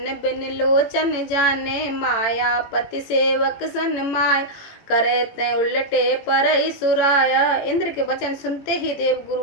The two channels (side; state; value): right; late; 18 ms